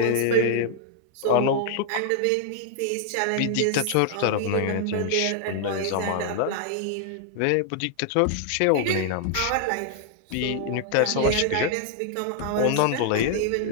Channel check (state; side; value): different; both; correlation 0.00